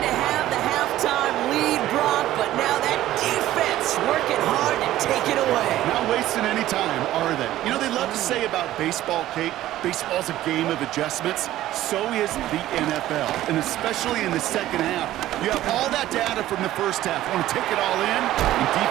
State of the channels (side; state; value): left; quieter; 14.3 dB